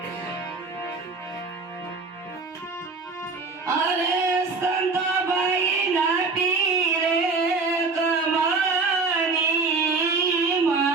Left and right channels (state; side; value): quieter; left; 4.1 dB